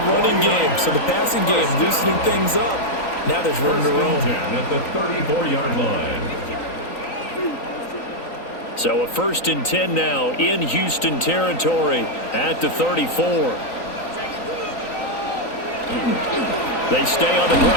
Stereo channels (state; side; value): late; right; 3.9 ms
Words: running game. So the passing game loosening things up. Now there's room to roam. At the 34-yard line. So a 1st and 10 now in Houston territory at the 34. They stay on the